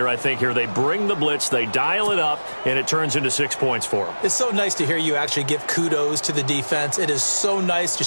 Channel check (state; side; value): inverted; both; correlation -1.00